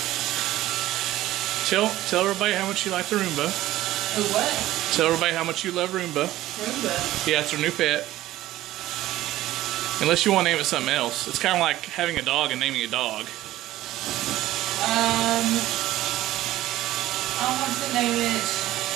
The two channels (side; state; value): left; quieter; 15.2 dB